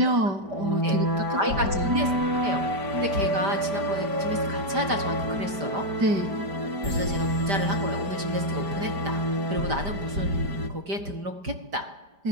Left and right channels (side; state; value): left; late; 5.0 ms